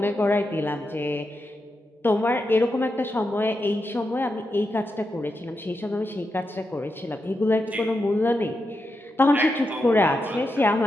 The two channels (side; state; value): both; normal; correlation 0.86